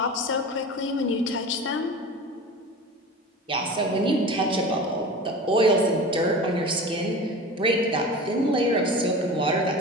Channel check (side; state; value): both; normal; correlation 0.34